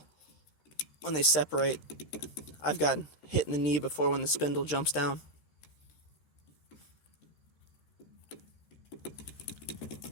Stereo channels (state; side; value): late; right; 13 ms